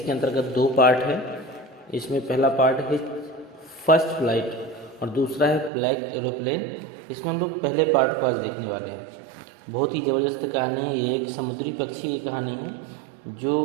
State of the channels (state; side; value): drops out; left; at 5.7 s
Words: अंतर्गत दो पार्ट है। इसमें पहला पार्ट है फर्स्ट फ्लाइट और दूसरा है ब्लैक एरोप्लेन। इसमें हम लोग पहले पार्ट को आज देखने वाले हैं। बहुत ही ज़बरदस्त कहानी है। ये एक समुद्री पक्षी की कहानी है